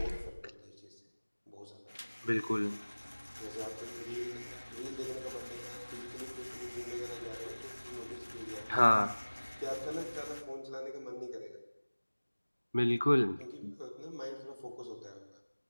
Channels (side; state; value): both; inverted; correlation -1.00